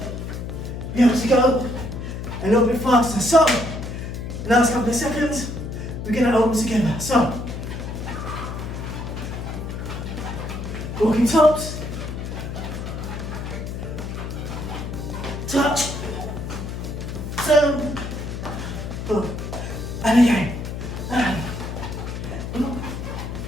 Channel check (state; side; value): noise; left; hum, 6 dB below the sound